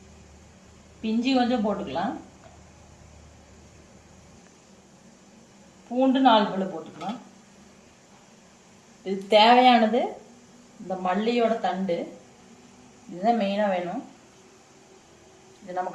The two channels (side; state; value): both; identical; correlation 1.00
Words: பிஞ்சி கொஞ்சம் போட்டுக்கலாம். பூண்டு 4 பல்லு போட்டுக்கலாம். இது தேவையானது இந்த மல்லியோட தண்டு, இதுதான் மெயினாக வேணும். இது நம்ம